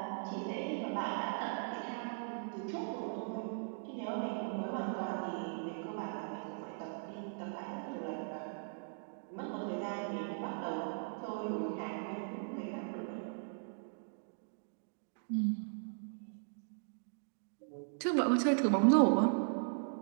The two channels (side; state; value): left; silent; digital silence